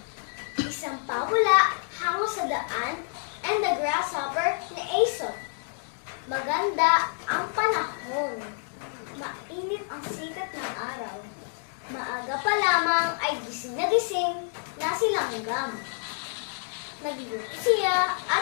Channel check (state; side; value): silent; right; 59 dB below the other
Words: isang pawala hango sa daan, and the grasshopper ni Aesop. Maganda ang panahon, mainit ang sikat ng araw. Maaga pa lamang ay gising na si langgam. Nagluto siya